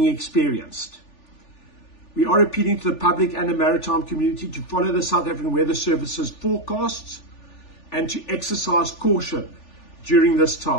experienced. We are appealing to the public and the maritime community to follow the South African Weather Services forecasts and to exercise caution during this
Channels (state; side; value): late; right; 3.4 ms